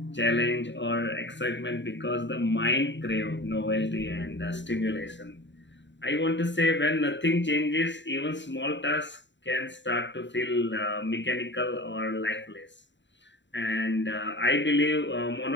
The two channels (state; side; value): late; right; 0.53 ms